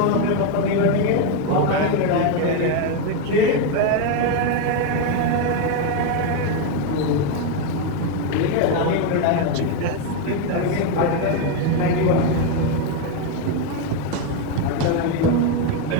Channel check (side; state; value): both; different; correlation 0.02